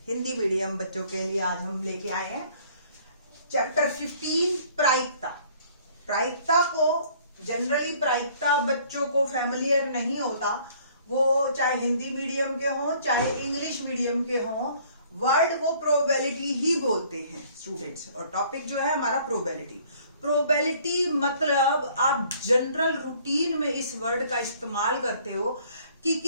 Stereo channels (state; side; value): inverted; both; correlation -0.57